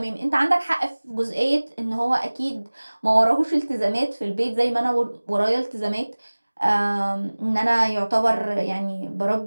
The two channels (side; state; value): both; inverted; correlation -1.00